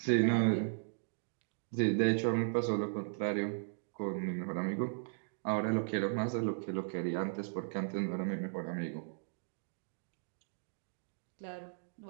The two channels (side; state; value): left; silent; digital silence